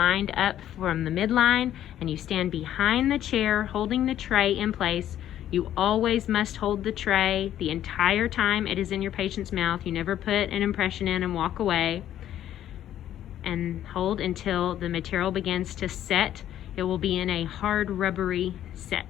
up from the midline, and you stand behind the chair holding the tray in place. You always must hold the tray the entire time it is in your patient's mouth. You never put an impression in and walk away. And hold until the material begins to set. It will be in a hard rubbery set.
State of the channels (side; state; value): right; quieter; 11.6 dB